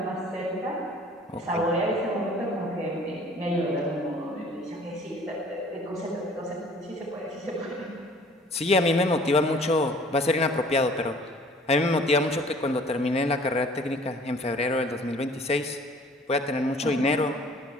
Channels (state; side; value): normal; both; correlation 0.52